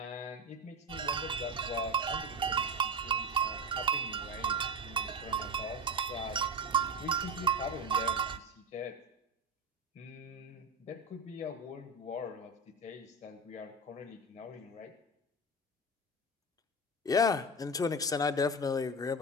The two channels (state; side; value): normal; both; correlation 0.20